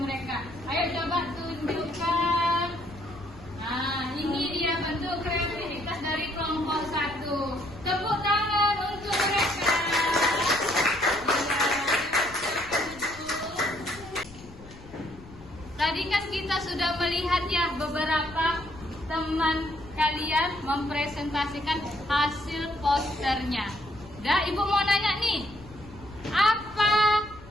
mereka. Ayo coba tunjukkan. Nah, ini dia bentuk kreativitas dari kelompok 1. Tepuk tangan untuk mereka. Tadi kan kita sudah melihat ya beberapa teman kalian mempresentasikan hasil posternya. Dah, ibu mau nanya nih, apa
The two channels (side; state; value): left; noise; rumble, 20 dB below the sound